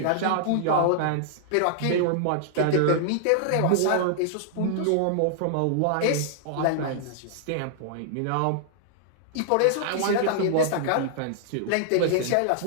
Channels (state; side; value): different; both; correlation -0.01